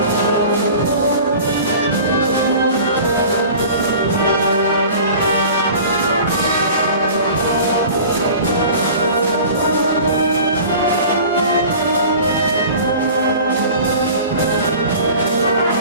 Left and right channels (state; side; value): inverted; both; correlation -0.42